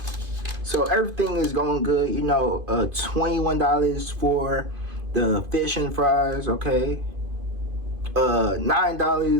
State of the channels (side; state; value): left; late; 2.5 ms